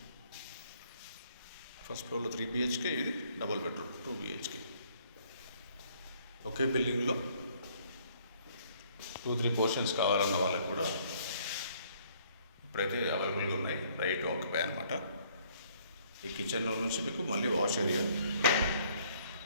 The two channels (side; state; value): both; inverted; correlation -0.63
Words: ఫస్ట్ ఫ్లోర్లో 3 BHK, ఇది double bedroom 2 BHK. ఒకే బిల్డింగ్లో 2-3 పోర్షన్స్ కావాలన్న వాళ్ళకి కూడా ఇప్పుడైతే అవైలబుల్గా ఉన్నాయి. రైట్ ఆక్యుపై అనమాట. ఈ కిచెన్లో నుంచి మీకు మళ్ళీ వాష్ ఏరియా,